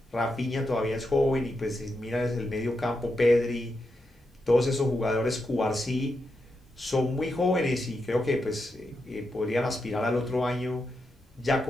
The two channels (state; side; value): normal; both; correlation 0.85